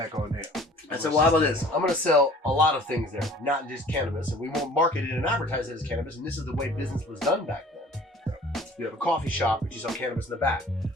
on there. I said, well, how about this? I'm going to sell a lot of things there, not just cannabis, and we won't market it and advertise it as cannabis, and this is the way business was done back then. You have a coffee shop, but you sell cannabis in the back,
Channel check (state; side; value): normal; both; correlation 0.49